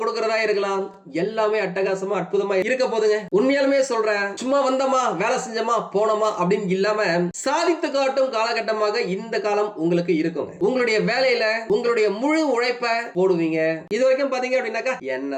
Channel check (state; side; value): identical; both; correlation 1.00